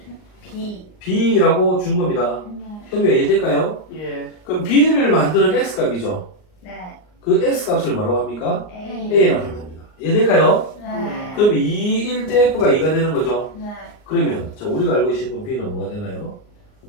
B. b라고 준 겁니다. 네. 현우야 이해될까요? 예. 그럼 b를 만드는 x값이죠. 네. 그 x값을 뭐라고 합니까? A. a라고 합니다. 이해될까요? 네. 그럼 2일 때 f가 2가 되는 거죠. 네. 그러면 자 우리가 알고 있는 b는 뭐가 되나요?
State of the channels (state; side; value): late; right; 38 ms